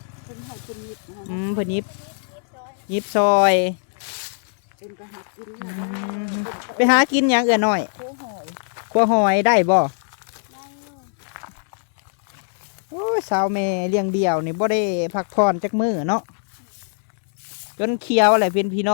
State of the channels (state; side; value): silent; right; digital silence